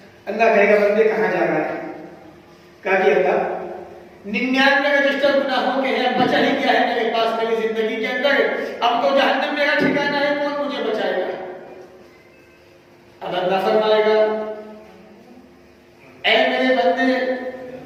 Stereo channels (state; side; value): identical; both; correlation 1.00